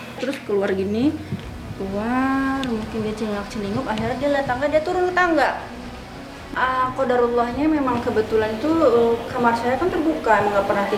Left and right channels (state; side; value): identical; both; correlation 1.00